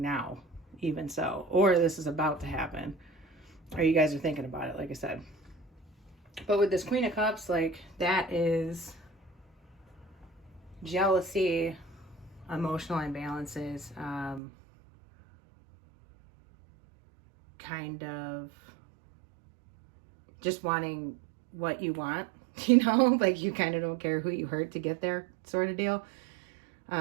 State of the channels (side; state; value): left; drops out; at 14.4 s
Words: even so. Or this is about to happen, or you guys are thinking about it, like I said. But with this Queen of Cups, that is jealousy, emotional imbalances, kind of just wanting what you want, you kind of don't care who you hurt to get there, sort of deal.